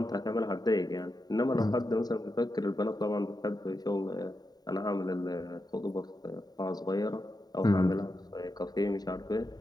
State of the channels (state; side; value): late; right; 0.19 ms